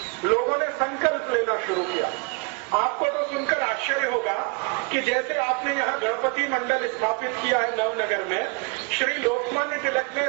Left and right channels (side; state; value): left; quieter; 31.5 dB